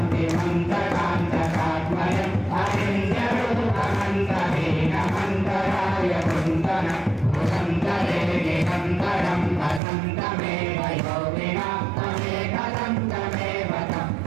అరింద్రరూపమంతహీనమంతరాయ కుంతనం భుజంతరే నిరంతరం వసంతమేవ యోగినా తమేకదంతమేవ తం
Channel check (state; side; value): drops out; left; at 9.8 s